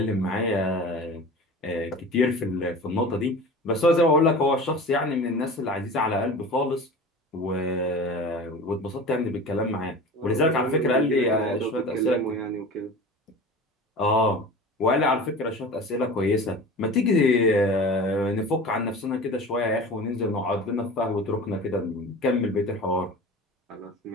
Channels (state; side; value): normal; both; correlation 0.35